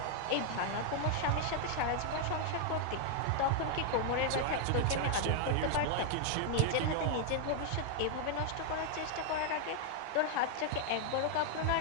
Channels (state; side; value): different; both; correlation 0.00